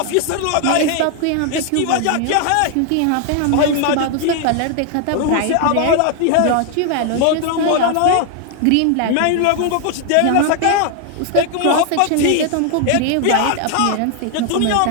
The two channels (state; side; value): different; both; correlation 0.00